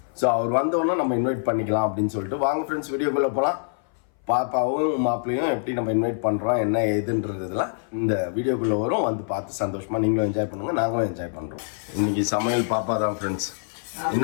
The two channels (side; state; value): right; silent; 59 dB below the other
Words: ஸோ அவர் வந்தோன்னா நம்ம இன்வைட் பண்ணிக்கலாம் அப்படின்னு சொல்லிட்டு வாங்க ஃப்ரெண்ட்ஸ் வீடியோக்குள்ளே போகலாம். பாப்பாவும் மாப்பிள்ளையும் எப்படி நம்ம இன்வைட் பண்ணுறோம் என்ன ஏதுன்றதுலாம் இந்த வீடியோக்குள்ளே வரும். வந்து பார்த்து சந்தோஷமாக நீங்களும் என்ஜாய் பண்ணுங்கள், நாங்களும் என்ஜாய் பண்ணுறோம். இன்றைக்கி சமையல் பாப்பா தான் ஃப்ரெண்ட்ஸ்.